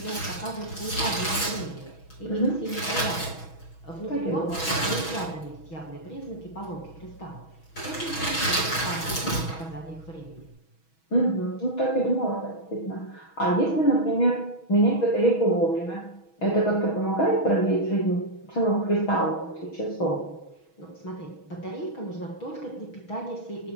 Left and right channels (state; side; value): late; right; 6.2 ms